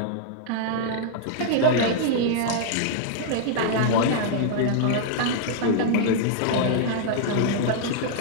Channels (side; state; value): both; different; correlation -0.01